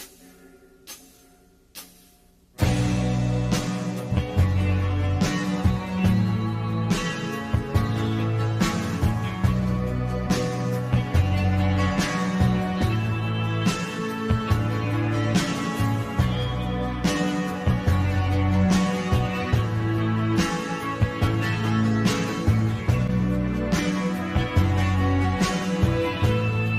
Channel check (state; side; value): identical; both; correlation 1.00